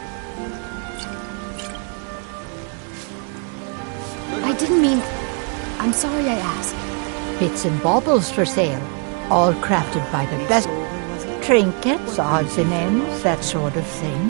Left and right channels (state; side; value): quieter; left; 38.0 dB